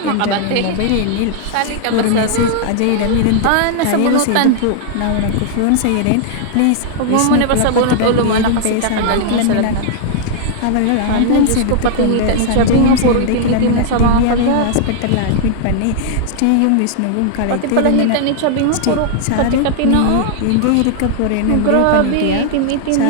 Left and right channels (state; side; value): different; both; correlation -0.01